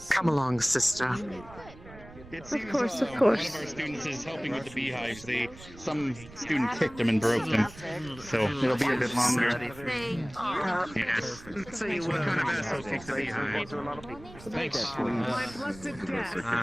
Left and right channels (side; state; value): right; noise; rumble, 18 dB below the sound